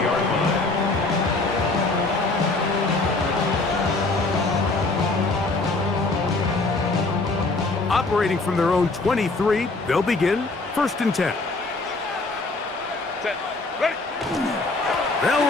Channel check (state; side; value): quieter; right; 3.4 dB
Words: line. Operating from their own 23, they'll begin first and 10. Set. Ready. They'll